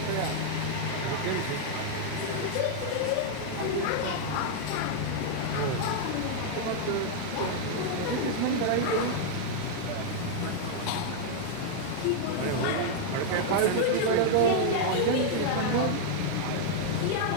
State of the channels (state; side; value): different; both; correlation -0.01